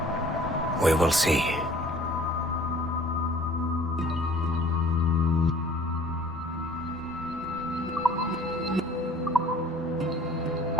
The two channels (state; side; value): normal; both; correlation 0.52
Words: We will see.